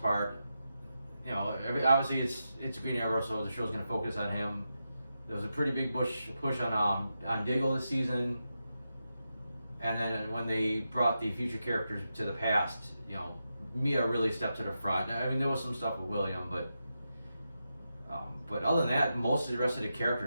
part. Obviously it's Green Arrow, so the show's going to focus on him. There was a pretty big push on Diggle this season, and then when they brought the future characters to the past, Mia really stepped to the front. I mean, there was some stuff with William, but other than that, most of the rest of the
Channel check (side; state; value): both; inverted; correlation -0.88